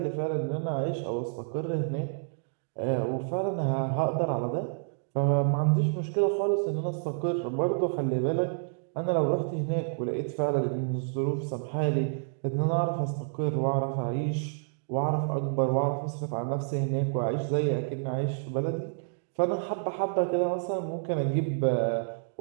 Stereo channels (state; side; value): silent; left; digital silence